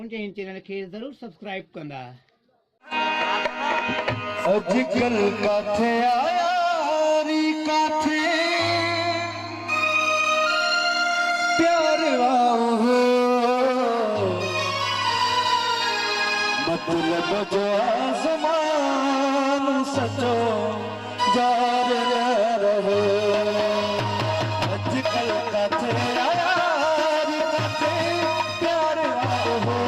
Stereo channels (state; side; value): identical; both; correlation 1.00